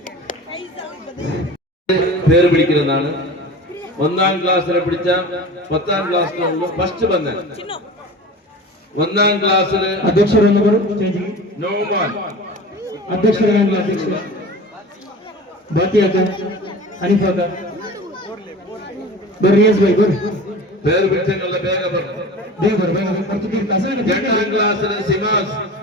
പേര് പിടിക്കുന്നതാണ് ഒന്നാം ക്ലാസ്സിലെ പിടിച്ച 10ാം ക്ലാസ്സിലുള്ള ഫസ്റ്റ് ബന്ധൻ ഒന്നാം ക്ലാസ്സില് നോമാൻ പേര് പിടിച്ചതിനുള്ള വേഗം 2ാം ക്ലാസ്സില് സിമാസ്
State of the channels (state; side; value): normal; both; correlation 0.36